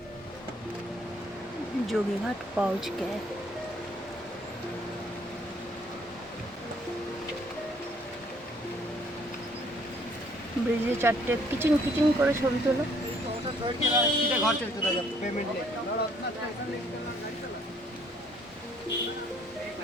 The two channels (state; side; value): normal; both; correlation 0.63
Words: जोगीघाट पहुंच गए। ব্রিজে চারটে কিচিং কিচিং করে ছবি তোলো।